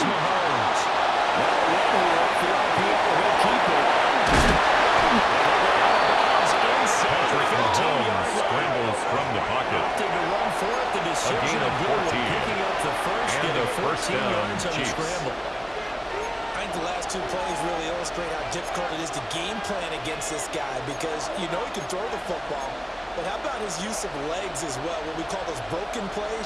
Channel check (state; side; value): identical; both; correlation 1.00